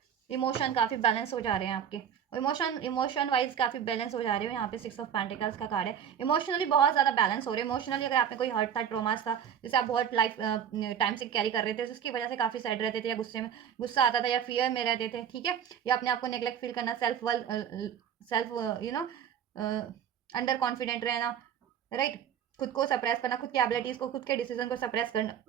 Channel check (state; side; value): quieter; left; 8.7 dB